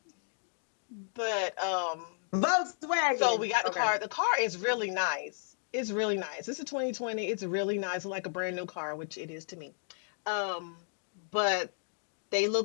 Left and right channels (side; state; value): right; silent; digital silence